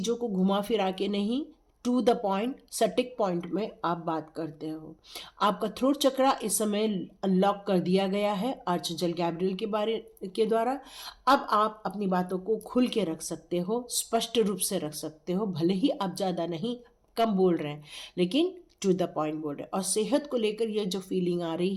को घुमा फिरा के नहीं, टू द पॉइंट, सटीक पॉइंट में आप बात करते हो। आपका थ्रोट चक्रा इस समय अनलॉक कर दिया गया है आर्चएंजल गैब्रियल के द्वारा। अब आप अपनी बातों को खुल के रख सकते हो, स्पष्ट रूप से रख सकते हो। भले ही आप ज़्यादा नहीं, कम बोल रहे हैं, लेकिन टू द पॉइंट बोल रहे हैं। और सेहत को लेकर ये जो फीलिंग आ रही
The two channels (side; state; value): both; identical; correlation 1.00